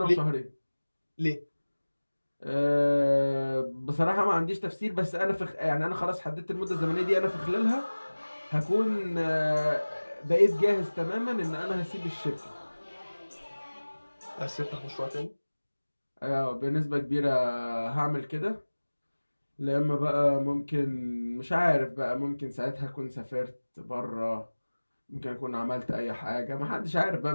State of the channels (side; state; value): both; inverted; correlation -1.00